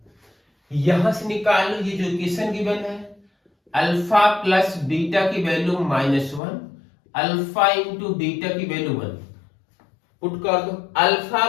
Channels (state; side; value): drops out; right; at 6.4 s